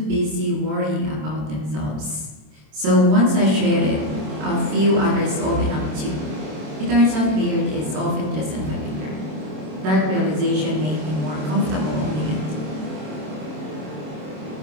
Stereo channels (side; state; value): left; late; 26 ms